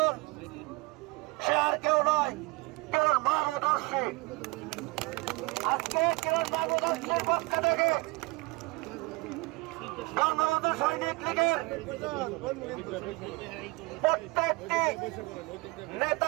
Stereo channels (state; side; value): quieter; left; 24.9 dB